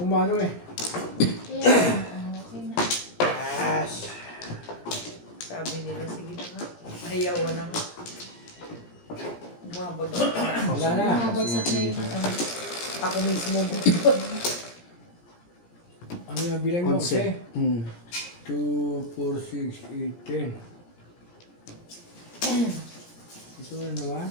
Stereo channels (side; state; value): right; late; 17 ms